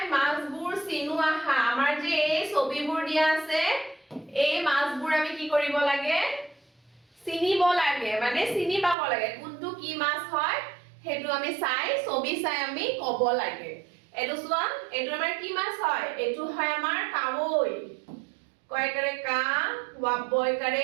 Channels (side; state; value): left; drops out; at 9.0 s